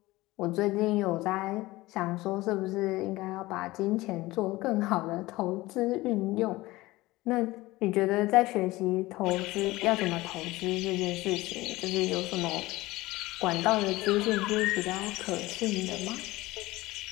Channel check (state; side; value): quieter; right; 19.4 dB